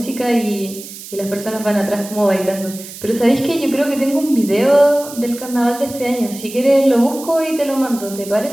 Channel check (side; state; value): right; noise; hiss, 14 dB below the sound